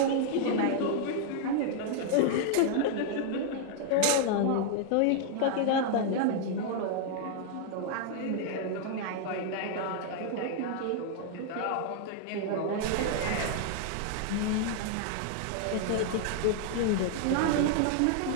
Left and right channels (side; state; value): both; different; correlation 0.00